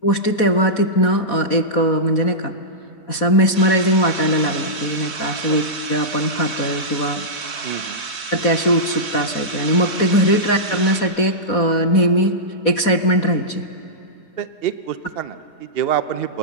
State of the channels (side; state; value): right; late; 4.1 ms